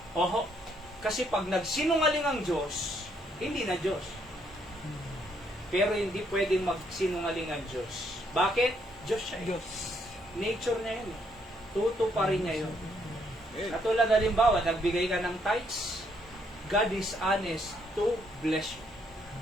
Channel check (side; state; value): both; normal; correlation 0.72